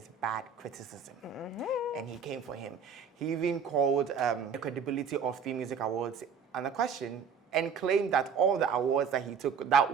bad criticism, and he came for him. He even called the credibility of 3music Awards under question and claimed that all the awards that he took that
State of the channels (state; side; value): quieter; left; 6.4 dB